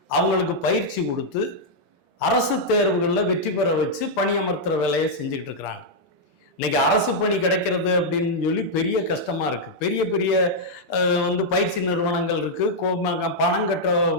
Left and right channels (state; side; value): normal; both; correlation -0.05